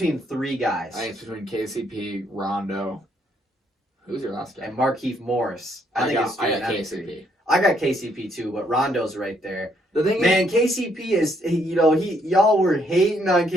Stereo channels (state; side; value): normal; both; correlation 0.71